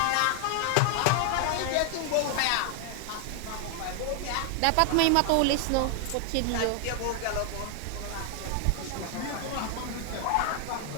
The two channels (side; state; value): both; different; correlation 0.00